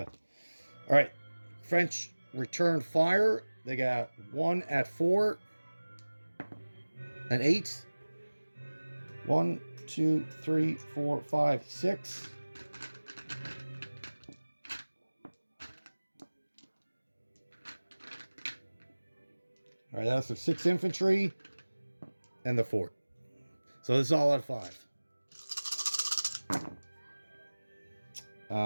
All right. French return fire. They got 1 at 4. An 8. 1, 2, 3, 4, 5, 6. All right, that's the 6 infantry and the fort. So this is all at 5.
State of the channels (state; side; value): inverted; both; correlation -1.00